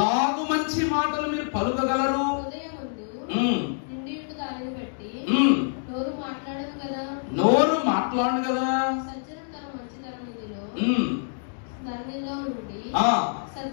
మంచి మాటలు మీరు పలుకగలరు. నోరు మాట్లాడు కదా.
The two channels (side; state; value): right; silent; digital silence